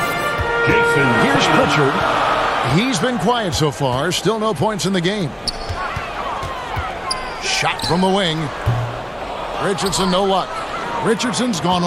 Jason. Here's Pritchard. He's been quiet so far. Still no points in the game. Shot from the wing. Richardson, no luck. Richardson's gone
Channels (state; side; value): identical; both; correlation 1.00